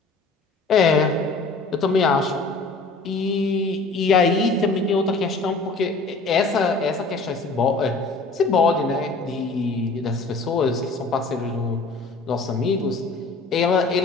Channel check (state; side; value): quieter; right; 3.6 dB